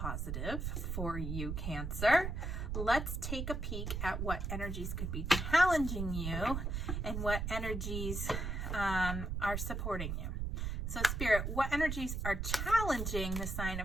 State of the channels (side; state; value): right; noise; rumble, 2 dB below the sound